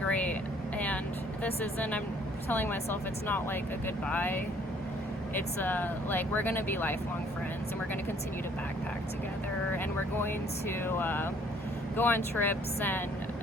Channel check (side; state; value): both; normal; correlation 0.60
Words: And I'm telling myself, it's not like a goodbye. It's like, we're gonna be lifelong friends, and we're gonna continue to backpack together, and we're going to go on trips,